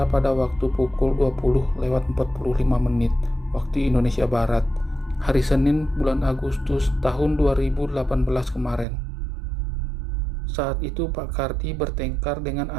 pada waktu pukul 20:45 waktu Indonesia Barat, hari Senin bulan Agustus tahun 2018 kemarin. Saat itu Pak Kardi bertengkar dengan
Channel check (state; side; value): drops out; left; at 8.8 s